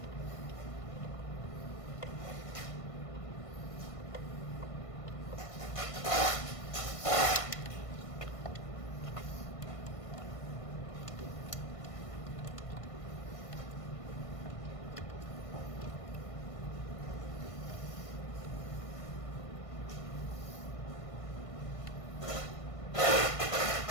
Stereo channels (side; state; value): right; late; 1.5 ms